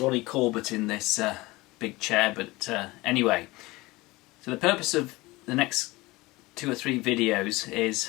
Corbett in this big chair, but anyway. So the purpose of the next 2 or 3 videos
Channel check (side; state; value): right; quieter; 21.1 dB